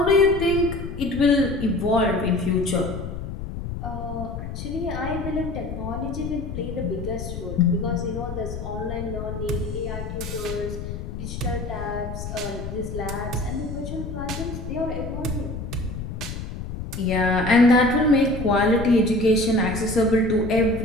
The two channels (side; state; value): left; noise; rumble, 7 dB below the sound